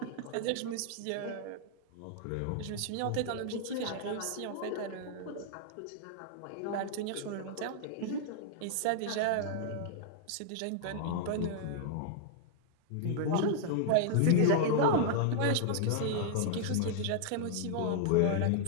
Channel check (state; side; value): different; both; correlation -0.01